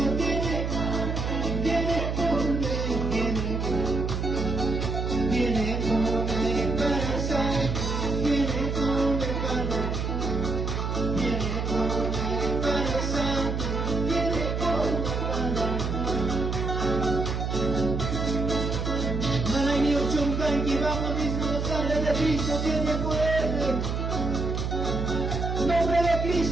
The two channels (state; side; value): noise; right; hum, 1 dB below the sound